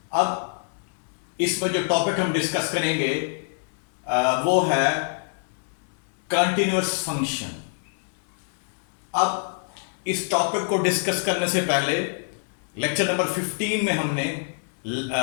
अब इसमें जो टॉपिक हम डिस्कस करेंगे वो है कंटिन्यूअस फंक्शन। अब इस टॉपिक को डिस्कस करने से पहले लेक्चर नंबर 15 में हमने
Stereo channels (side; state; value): right; silent; digital silence